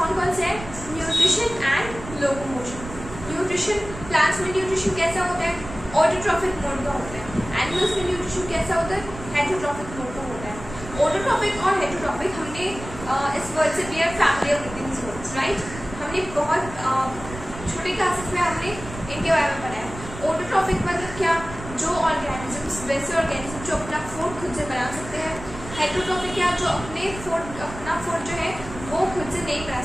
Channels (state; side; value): noise; right; rumble, 12 dB below the sound